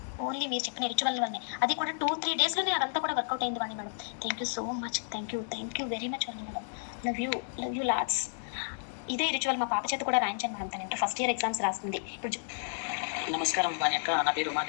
ఓన్లీ మీరు చెప్పిన రిచువల్ వల్లనే. అది కూడా 2-3 daysలోనే అదంతా కూడా వర్కౌట్ అయింది Vani madam. Thank you so much. Thank you very much Vani madam. Love you lots. ఇదే రిచువల్ మా పాప చేత కూడా రాయించాను మేడం. తను ఇంటర్ ఫస్ట్ ఇయర్ ఎగ్జామ్స్ రాస్తుంది ఇప్పుడు. నమస్కారం వాణి అక్క, నా పేరు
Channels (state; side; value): silent; right; digital silence